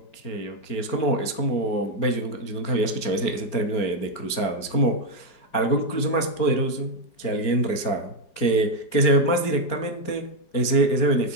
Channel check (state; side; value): late; right; 4.4 ms